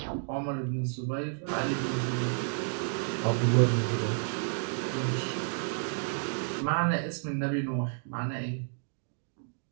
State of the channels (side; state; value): left; silent; 57 dB below the other